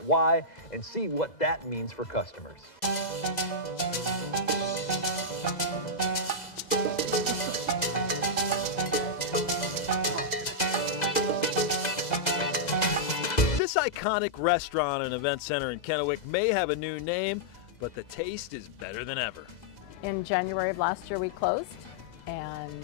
why and see what that means for customers. This iconic restaurant and event center in Kennewick may have a new name, but the taste is better than ever. In January of last year we closed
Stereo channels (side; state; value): right; late; 2.0 ms